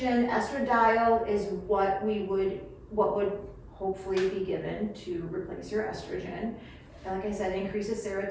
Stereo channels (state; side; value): identical; both; correlation 1.00